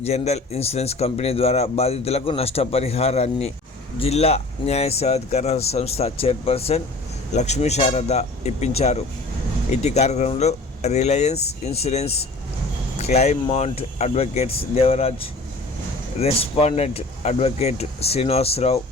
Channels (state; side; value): quieter; right; 3.0 dB